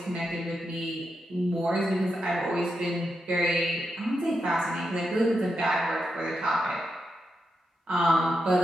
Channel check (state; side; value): normal; both; correlation 0.86